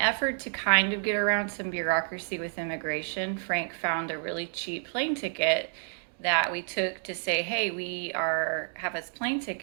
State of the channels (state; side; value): silent; left; 58 dB below the other